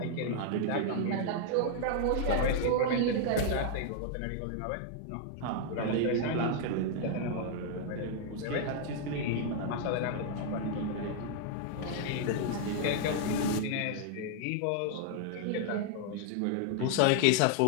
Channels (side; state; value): both; different; correlation 0.00